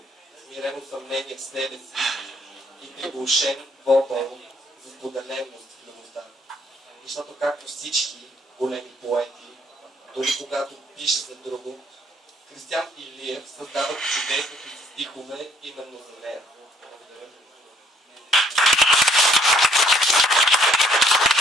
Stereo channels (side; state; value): both; normal; correlation 0.64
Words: смирено съмнение в себе си и приглушен вопъл за споделеност в любовта. Защото както всички големи поети, дори когато пише за друго, Кристиан Илиев създава чудесните си стихове именно за нея. Благодаря.